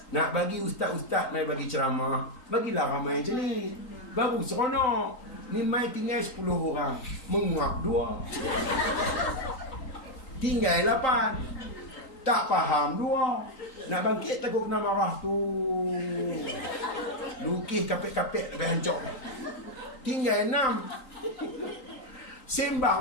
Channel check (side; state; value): right; late; 3.8 ms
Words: nak bagi ustaz-ustaz mai bagi ceramah, bagilah ramai macam ni. Baru seronok. Ni mai tinggal 10 orang, menguap 2. Tinggal 8. Tak faham 2. Nak bangkit takut kena marah tu. Lukis kapek-kapek sampai hancur. Tinggal 6.